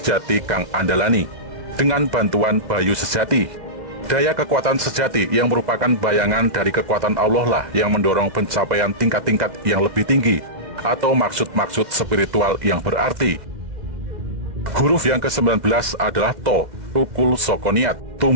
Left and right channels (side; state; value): left; late; 2.1 ms